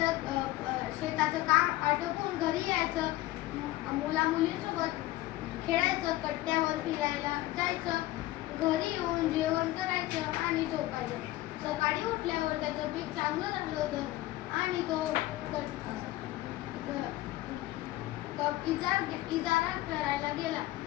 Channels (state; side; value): quieter; right; 17.0 dB